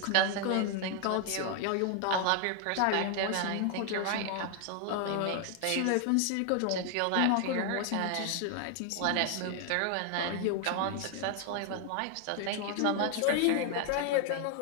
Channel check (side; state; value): both; different; correlation 0.00